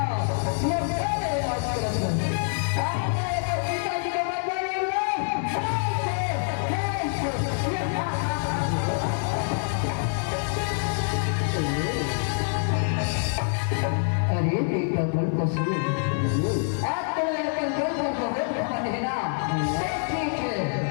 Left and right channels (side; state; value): right; silent; digital silence